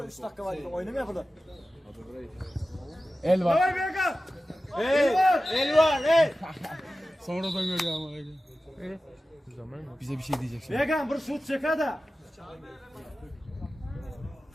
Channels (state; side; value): normal; both; correlation 0.94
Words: 3 dakika var. Oynamıyor burada. El var. Vay Beka. El var el. Sonradan görüyor ama. Bize bir şey diyecek şimdi. Vegan bir şut çek hadi.